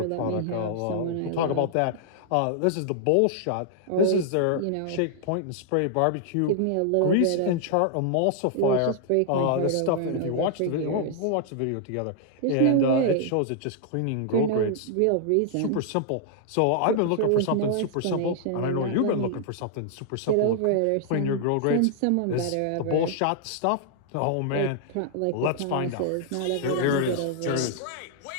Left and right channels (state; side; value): different; both; correlation -0.01